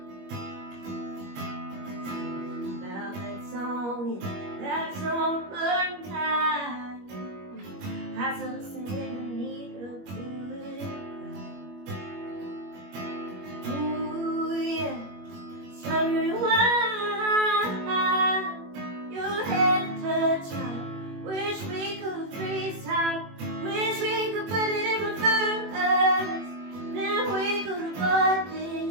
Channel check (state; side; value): late; left; 21 ms